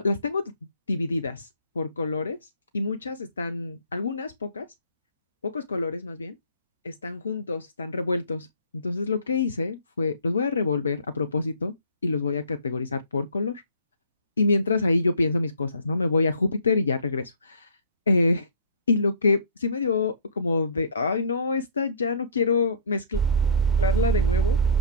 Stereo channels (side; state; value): both; inverted; correlation -0.48